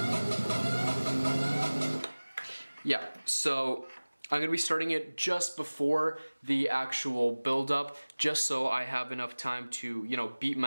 Yeah, so I'm going to be starting it just before the actual build-up, just so I have enough time to, you know, beat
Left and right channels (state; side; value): inverted; both; correlation -1.00